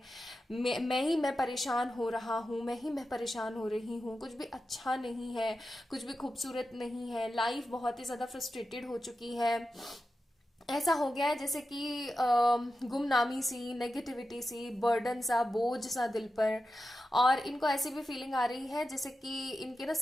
परेशान हो रहा हूँ, मैं परेशान हो रही हूँ, कुछ भी अच्छा नहीं है, कुछ भी खूबसूरत नहीं है, लाइफ बहुत ही ज्यादा फ्रस्ट्रेटेड हो चुकी है। ऐसा हो गया है जैसे कि गुमनामी सी, नेगेटिविटी सी, बर्डन सा, बोझ सा दिल पर। और इनको ऐसी भी फीलिंग आ रही है जैसे कि इनके ना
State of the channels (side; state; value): both; normal; correlation 0.91